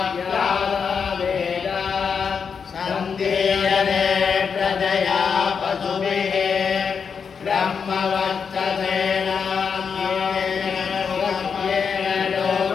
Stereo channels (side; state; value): right; quieter; 6.2 dB